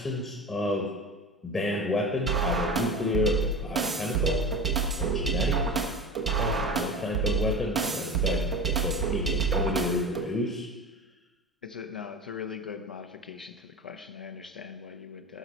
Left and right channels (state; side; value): normal; both; correlation 0.30